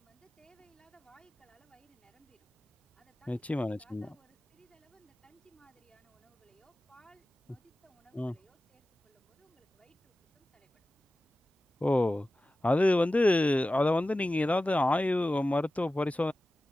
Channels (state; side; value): normal; both; correlation 0.95